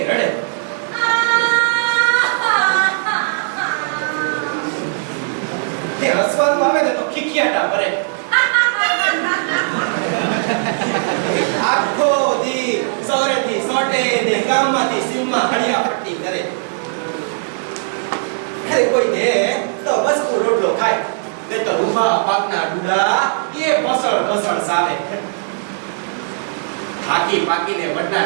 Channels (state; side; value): silent; left; digital silence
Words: રડે. તે હસવાનું આવે ને તો ખીખિયાટા ભરે. આખો દી સૌરેથી સોટે ને ગામમાંથી સીમમાં હળિયા પટ્ટી કરે. અરે કોઈ દે તો બસ રોટલો ખાય ને તો રૂપા પાકના ડુડા એ બસળ બસળ સાવે. થાકી પાકીને વડના